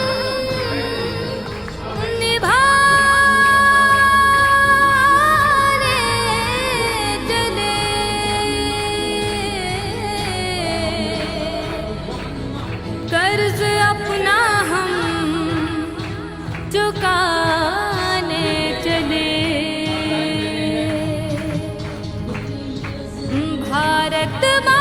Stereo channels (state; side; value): identical; both; correlation 1.00